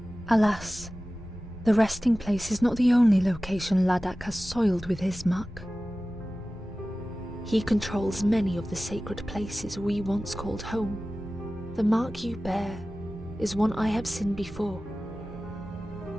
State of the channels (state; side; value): normal; both; correlation 0.96